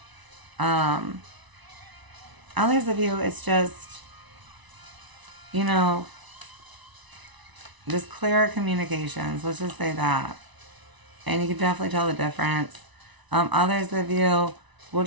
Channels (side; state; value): left; late; 1.0 ms